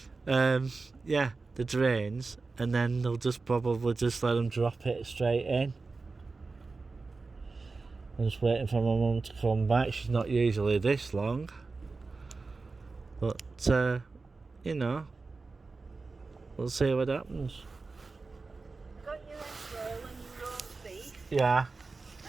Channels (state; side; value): quieter; left; 3.9 dB